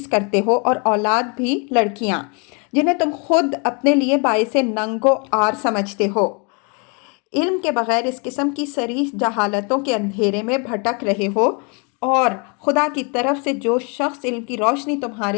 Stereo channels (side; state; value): right; quieter; 34.3 dB